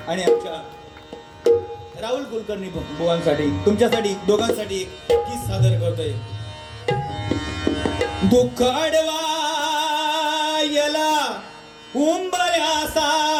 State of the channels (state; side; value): identical; both; correlation 1.00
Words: आणि आमच्या राहुल कुलकर्णी बुवांसाठी, तुमच्यासाठी दोघांसाठी एक गीत सादर करतोय. दुःख अडवायला